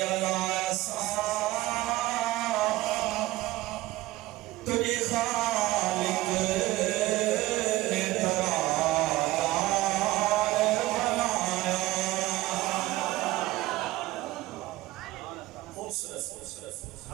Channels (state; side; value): quieter; left; 17.9 dB